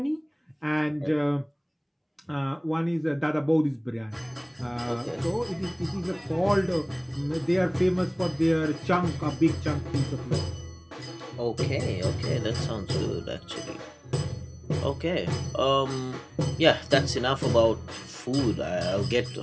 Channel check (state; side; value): identical; both; correlation 1.00